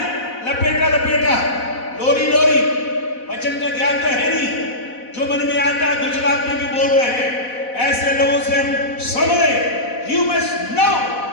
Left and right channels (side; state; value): right; late; 4.0 ms